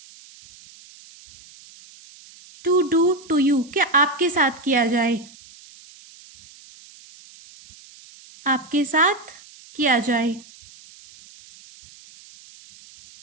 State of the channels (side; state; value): right; noise; hiss, 23 dB below the sound